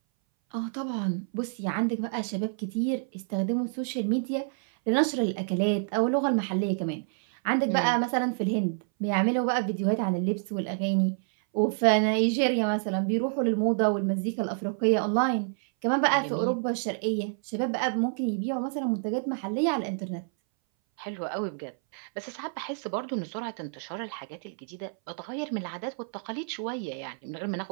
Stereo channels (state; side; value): silent; left; 59 dB below the other